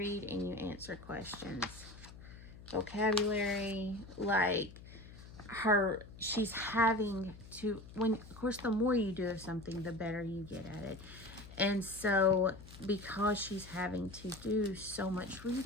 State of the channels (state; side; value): noise; left; hum, 16 dB below the sound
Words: and you answer questions. Vocabulary, like she's having to, of course, the more you do of something, the better you get at it. And so because she's having to do so much